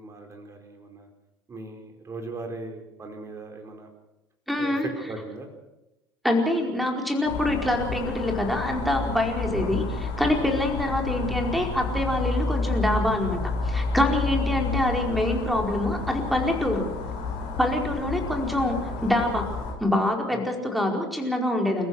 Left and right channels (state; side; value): normal; both; correlation 0.69